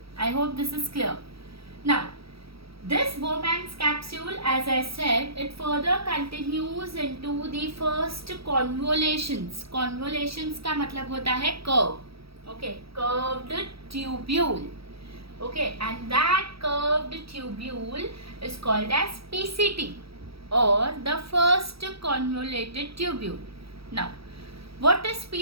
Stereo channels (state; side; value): late; left; 0.76 ms